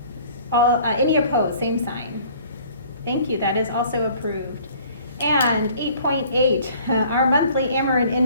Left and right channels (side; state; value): both; inverted; correlation -0.53